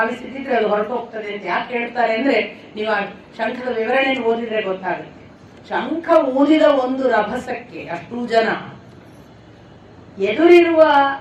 ಅದು ಹೊರಟೋಗ್ತದೆ ಅಂತ ಯಾಕೆ ಹೇಳ್ತಾರೆ ಅಂದ್ರೆ, ನೀವು ಆ ಶಂಖದ ವಿವರಣೆ ಓದಿದ್ರೆ ಗೊತ್ತಾಗುತ್ತೆ. ಶಂಖ ಊದಿದ ಒಂದು ರಭಸಕ್ಕೆ ಅಷ್ಟು ಜನ ಎದುರಿರುವ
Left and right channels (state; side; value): identical; both; correlation 1.00